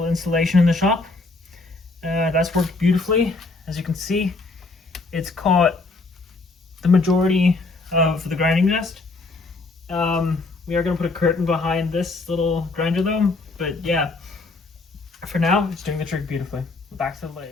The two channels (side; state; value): right; quieter; 3.5 dB